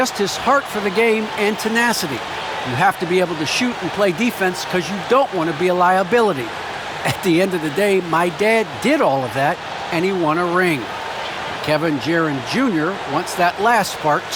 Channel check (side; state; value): both; identical; correlation 1.00